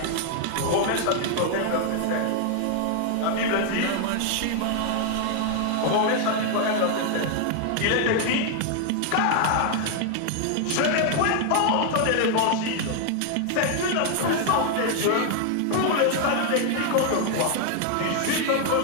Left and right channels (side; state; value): both; different; correlation 0.00